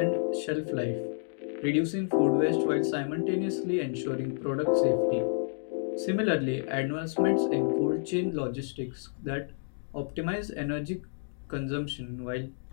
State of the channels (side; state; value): right; silent; digital silence